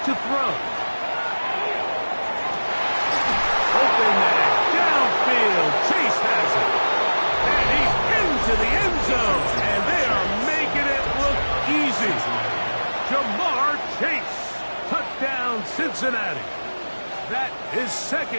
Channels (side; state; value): both; inverted; correlation -1.00